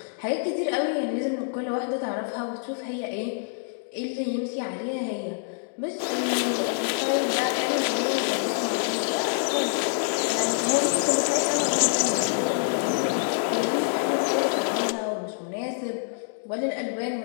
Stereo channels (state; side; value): silent; right; digital silence